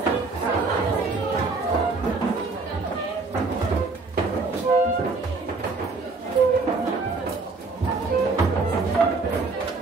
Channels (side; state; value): left; quieter; 3.9 dB